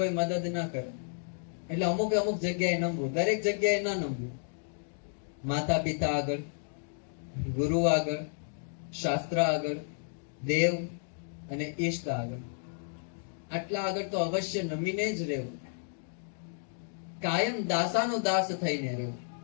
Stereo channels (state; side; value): silent; right; digital silence